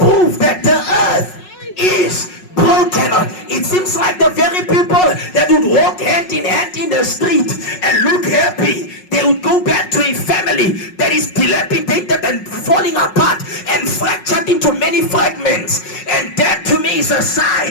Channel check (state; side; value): late; right; 5.4 ms